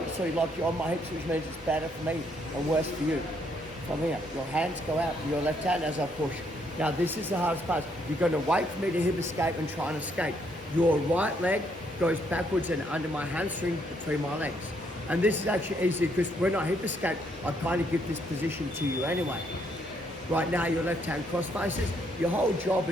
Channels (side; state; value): both; normal; correlation 0.72